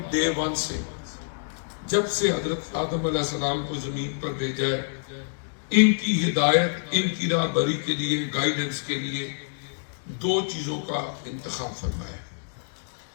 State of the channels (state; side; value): silent; right; digital silence